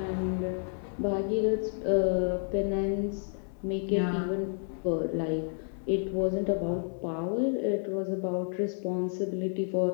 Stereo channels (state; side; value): silent; right; 58 dB below the other